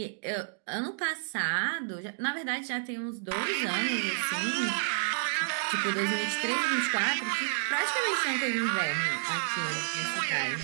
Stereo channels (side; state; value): left; silent; digital silence